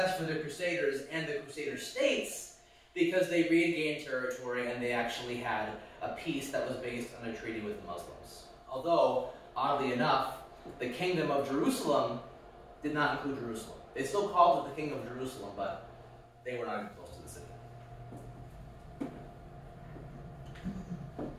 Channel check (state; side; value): identical; both; correlation 1.00